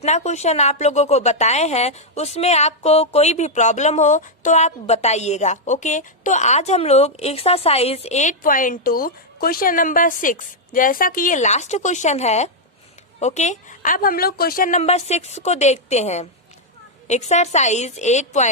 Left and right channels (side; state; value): both; normal; correlation -0.02